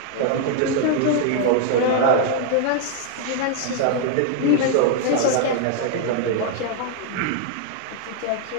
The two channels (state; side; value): different; both; correlation 0.00